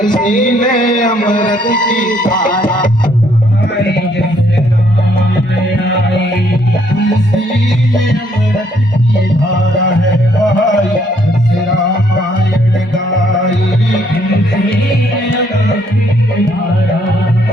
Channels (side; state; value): both; normal; correlation 0.68